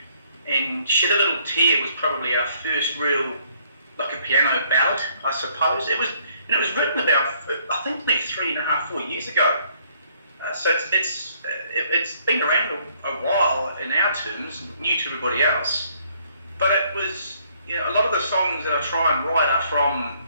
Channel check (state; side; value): inverted; both; correlation -0.65